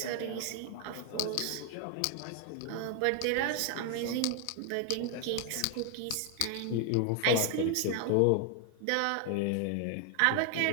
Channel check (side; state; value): both; different; correlation 0.00